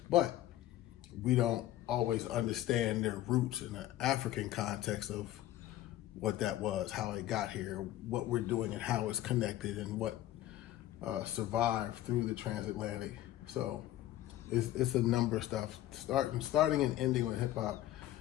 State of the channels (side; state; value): right; quieter; 14.2 dB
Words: but we don't always understand their roots in the African context of what that was, how it got here, what we're doing and how it's connected and what survived through the transatlantic. So it's a number of stuff. Starting and ending with hip hop,